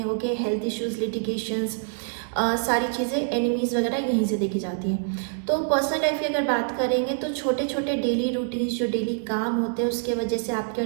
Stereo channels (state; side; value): silent; left; digital silence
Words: ओके, हेल्थ इश्यूज, लिटिगेशंस, सारी चीज़ें, एनिमीज़ वगैरह यहीं से देखी जाती हैं। तो पर्सनल लाइफ की अगर बात करेंगे तो छोटे छोटे डेली रूटीन्स, जो डेली काम होते हैं, उसके वजह से आपके